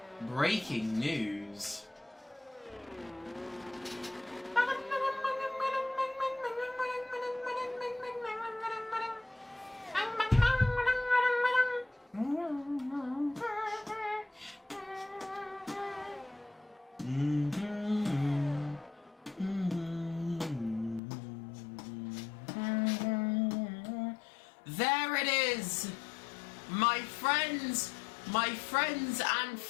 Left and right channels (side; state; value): right; drops out; at 21.0 s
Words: Breaking news. There it is! My friends and